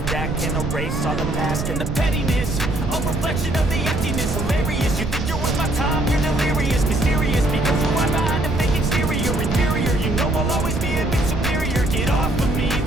that can erase all the mask and the pettiness. A reflection of the emptiness, hilarious. You think you're worth my time, you're delirious, mysterious, because who I'm behind a fake exterior, inferior. You know I'll always be a bit superior. Get off of me,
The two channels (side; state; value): right; noise; rumble, 4 dB below the sound